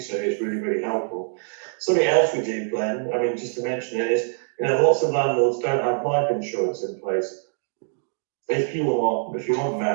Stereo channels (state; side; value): silent; left; digital silence